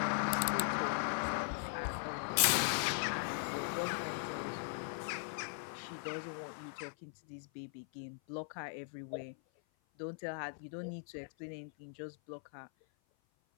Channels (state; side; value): silent; right; 51 dB below the other